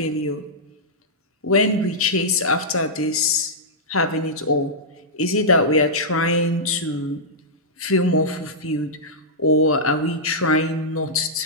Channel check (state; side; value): normal; both; correlation -0.12